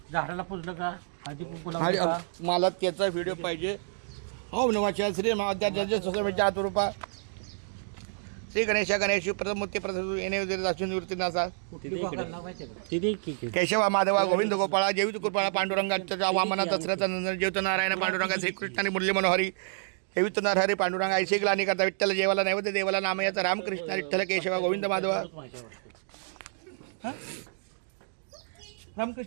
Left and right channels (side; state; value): left; silent; digital silence